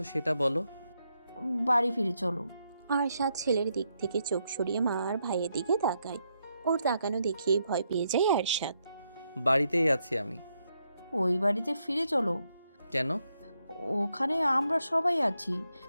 সেটা বলো। বাড়ি ফিরে চলো। আরশাদ ছেলের দিক থেকে চোখ সরিয়ে মা আর ভাইয়ের দিকে তাকায়। ওর তাকানো দেখেই ভয় পেয়ে যায় আরশাদ। বাড়িতেই আছি আমি। ওই বাড়িতে ফিরে চলো। কেন? ওখানে আমরা সবাই আছি।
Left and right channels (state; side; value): inverted; both; correlation -0.79